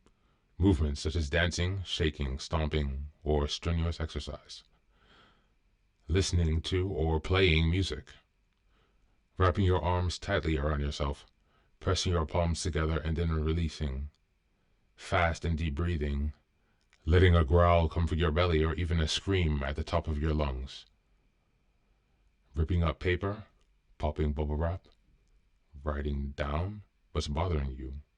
Movements such as dancing, shaking, stomping, or strenuous exercise. Listening to or playing music. Wrapping your arms tightly around yourself, pressing your palms together and then releasing. Fast and deep breathing. Letting a growl come from your belly or even a scream at the top of your lungs. Ripping up paper, popping bubble wrap, writing down what's bothering you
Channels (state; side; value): identical; both; correlation 1.00